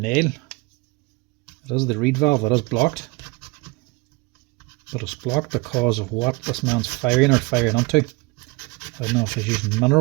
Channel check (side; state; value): left; quieter; 25.2 dB